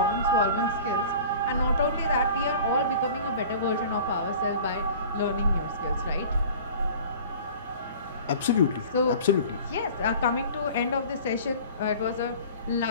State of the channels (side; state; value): both; inverted; correlation -0.42